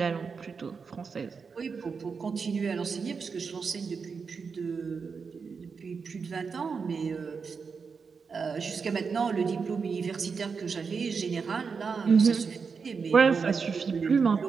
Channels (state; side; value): quieter; left; 5.4 dB